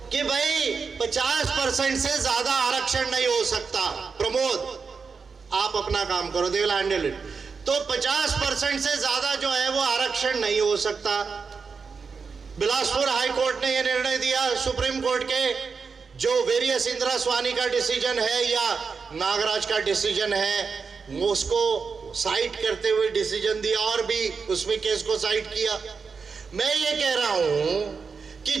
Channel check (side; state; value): left; quieter; 5.3 dB